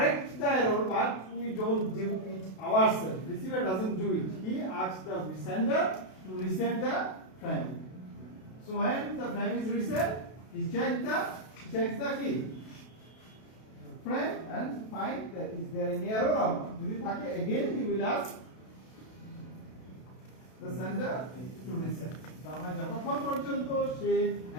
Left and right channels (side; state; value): right; late; 32 ms